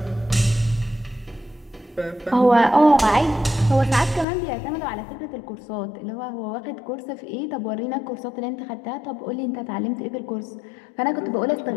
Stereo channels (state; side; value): drops out; right; at 4.2 s